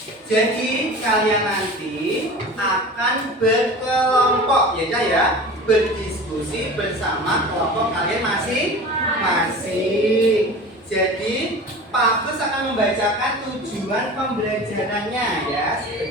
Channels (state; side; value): normal; both; correlation 0.36